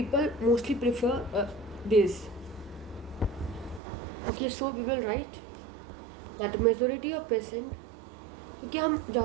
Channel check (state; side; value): drops out; left; at 3.8 s